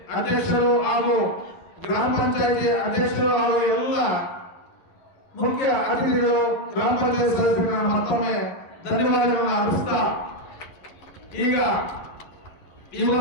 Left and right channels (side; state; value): right; late; 11 ms